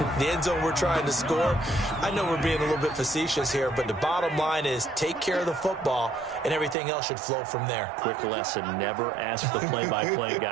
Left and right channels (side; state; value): left; drops out; at 6.8 s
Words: The end zone we're trying to score. I know we're being a little bit facetious here, but the bottom line is take care of the football, and everything else should flow from there. Quick lesson, never ask the play-by-play